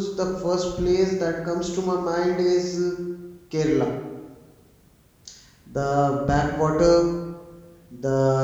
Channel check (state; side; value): identical; both; correlation 1.00